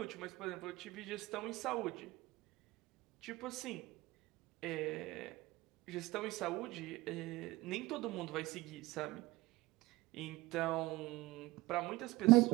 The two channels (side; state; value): left; quieter; 19.7 dB